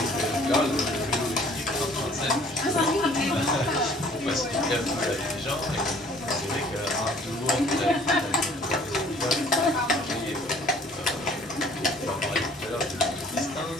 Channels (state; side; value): normal; both; correlation 0.54